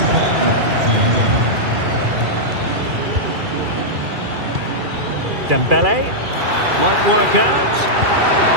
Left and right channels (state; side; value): late; left; 2.4 ms